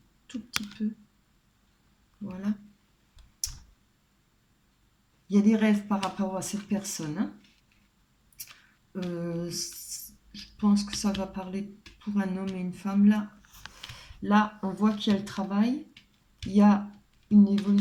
tout petit peu. Voilà. Il y a des rêves par rapport à cette personne. Hein. Je pense que ça va parler pour un homme et une femme. Là on voit qu'il y a le travail. Il y a une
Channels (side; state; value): both; identical; correlation 1.00